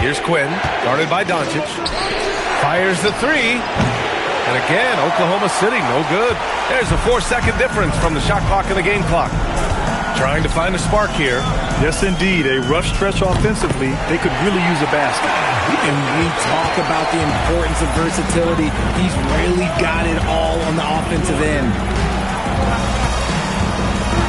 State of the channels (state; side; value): identical; both; correlation 1.00